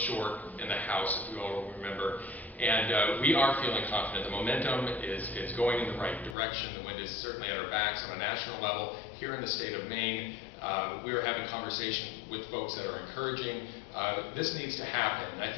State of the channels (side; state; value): right; drops out; at 6.4 s